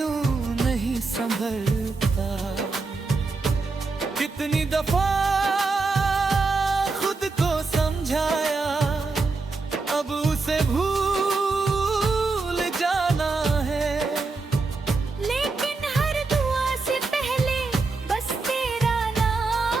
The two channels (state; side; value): quieter; left; 3.9 dB